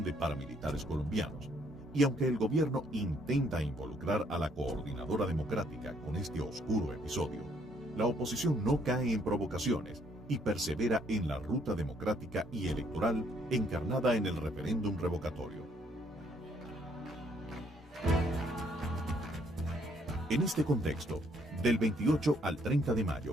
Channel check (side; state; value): both; normal; correlation 0.67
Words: de paramilitares colombianos. Y aunque el gobierno intenta involucrar a la Coordinadora Democrática con este oscuro episodio, la oposición no cae en provocaciones y persevera en la ruta democrática y electoral encarnada en el referéndum revocatorio. En este contexto, del 28 al 30 de mayo,